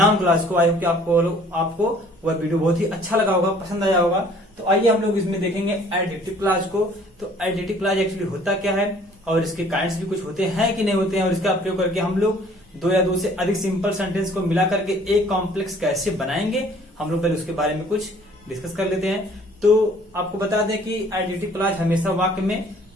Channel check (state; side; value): normal; both; correlation 0.55